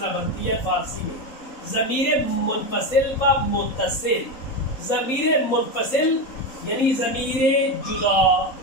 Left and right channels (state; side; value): late; right; 3.8 ms